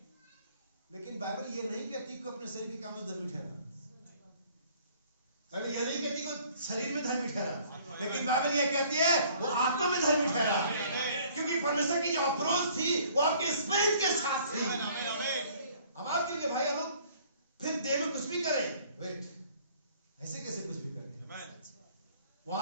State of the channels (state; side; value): inverted; both; correlation -0.57